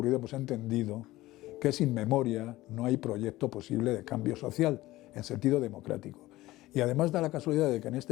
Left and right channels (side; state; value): right; quieter; 17.6 dB